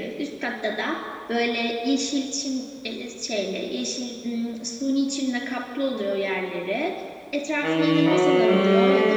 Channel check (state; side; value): identical; both; correlation 1.00